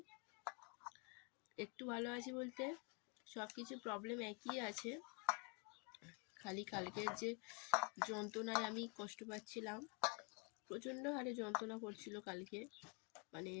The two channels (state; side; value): quieter; right; 34.8 dB